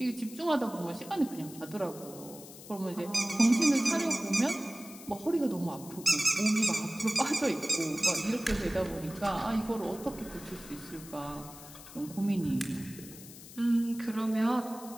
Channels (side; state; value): left; noise; hiss, 16 dB below the sound